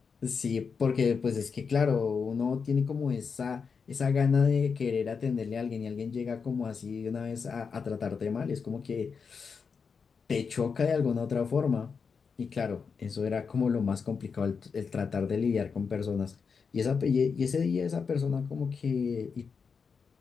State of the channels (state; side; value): quieter; right; 5.7 dB